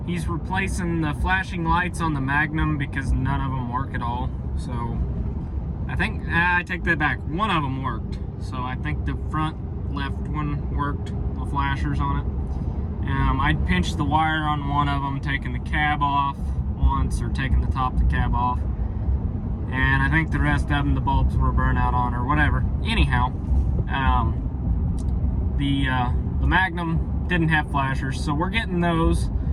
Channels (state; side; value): identical; both; correlation 1.00